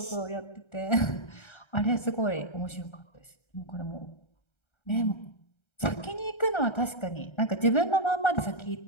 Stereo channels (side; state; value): right; late; 1.3 ms